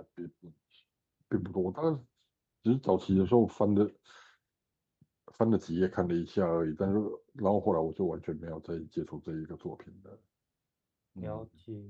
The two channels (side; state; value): both; identical; correlation 1.00